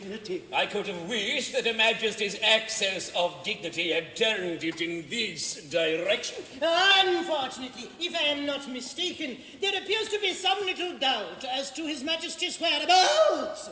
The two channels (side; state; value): both; identical; correlation 1.00